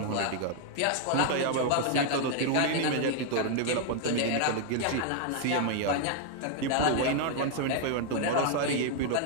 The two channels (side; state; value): both; different; correlation 0.00